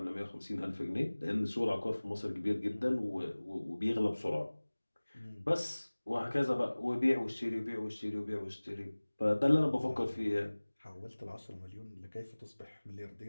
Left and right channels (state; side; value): inverted; both; correlation -1.00